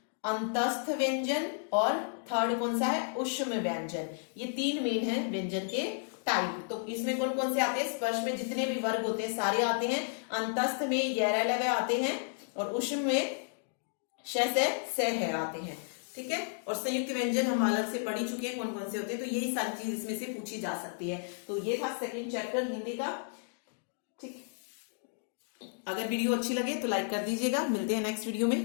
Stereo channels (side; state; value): right; silent; digital silence